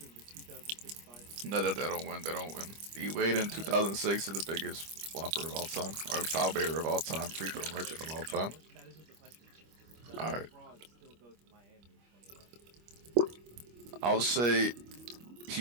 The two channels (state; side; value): late; left; 25 ms